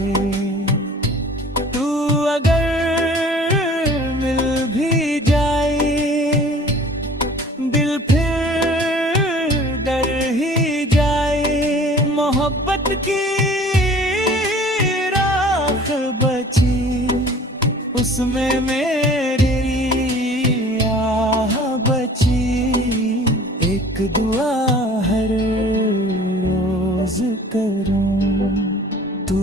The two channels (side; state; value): both; normal; correlation 0.48